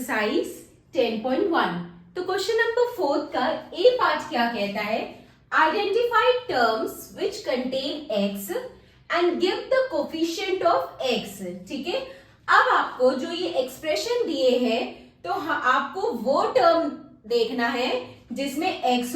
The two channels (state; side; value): identical; both; correlation 1.00